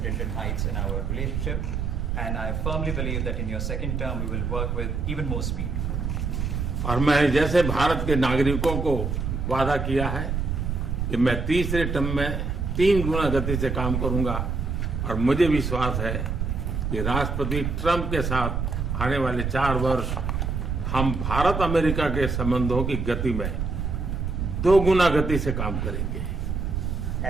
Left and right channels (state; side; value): noise; right; rumble, 1 dB below the sound